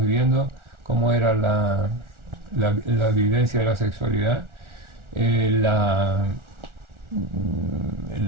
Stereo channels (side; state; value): left; late; 1.4 ms